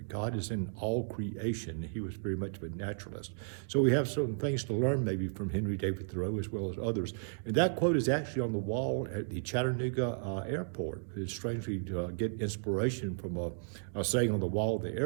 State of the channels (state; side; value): silent; left; digital silence